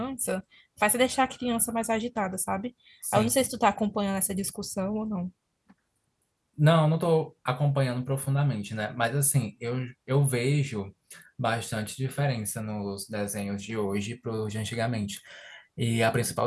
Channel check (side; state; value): both; identical; correlation 1.00